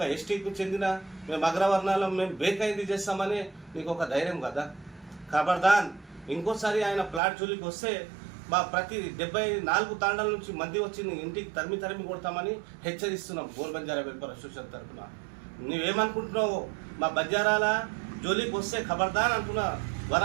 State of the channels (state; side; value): drops out; left; at 7.2 s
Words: ఎస్టీకి చెందిన మేము అగ్రవర్ణాలం మేము బ్రేక్ అయింది చేస్తామని నీకు ఒక ధైర్యం కదా. ఖబర్దాన్ ఇంకోసారి ఆయన ప్లాట్ జోలికి వస్తే మా ప్రతి 74 తాండాల నుంచి మంది వచ్చి ఇంటికి తరిమి కొడతామని హెచ్చరిస్తున్నాం గోల్ బంజారా వెల్ఫేర్ అసోసియేషన్ తరఫున. నువ్వేమనుకుంటున్నావు? మా బంజారాల జోలికి వస్తే ఖబర్దాన్ అంటున్నా.